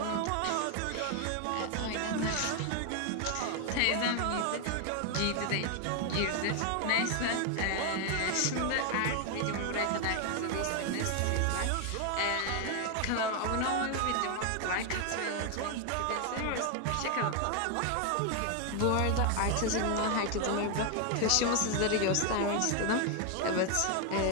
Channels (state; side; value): different; both; correlation 0.01